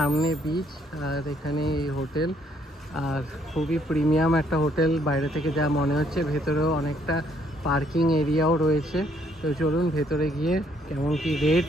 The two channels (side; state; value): both; normal; correlation 0.68